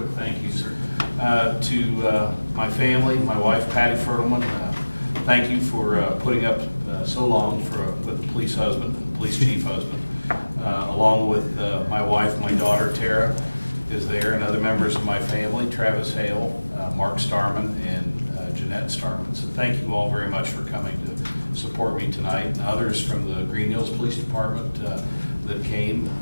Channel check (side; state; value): both; inverted; correlation -1.00